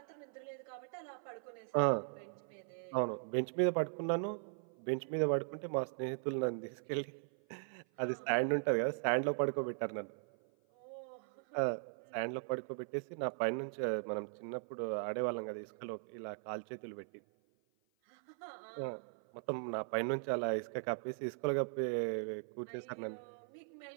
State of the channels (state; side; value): silent; left; 52 dB below the other